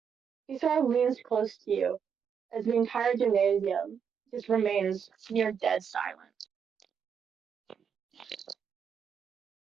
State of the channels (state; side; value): quieter; left; 7.2 dB